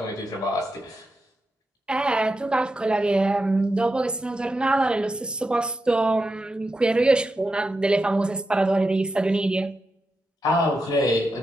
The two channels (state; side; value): normal; both; correlation 0.88